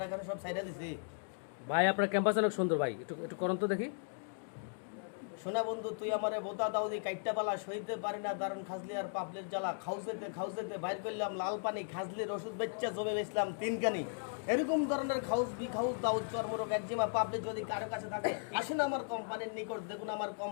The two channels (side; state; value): right; silent; digital silence